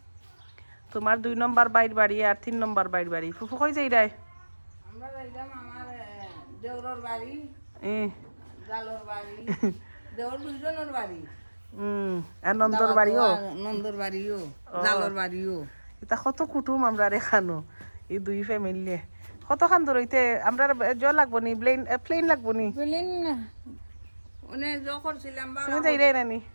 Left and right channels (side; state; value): both; inverted; correlation -1.00